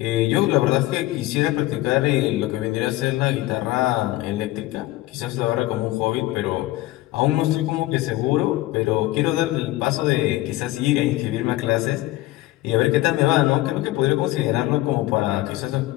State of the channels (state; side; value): quieter; right; 17.4 dB